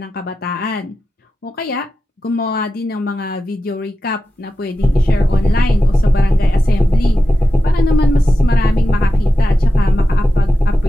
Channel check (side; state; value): both; normal; correlation 0.91